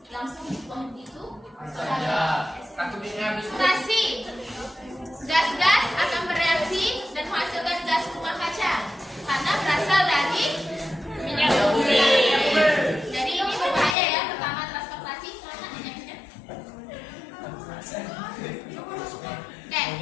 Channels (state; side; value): drops out; right; at 14.0 s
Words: langsung dibuang begitu saja. Stasi gas-gas akan bereaksi dan menghasilkan gas rumah kaca karena berasal dari minyak bumi. Jadi ini berbahaya ya. Pertama transportasi karena minyaknya. Oke,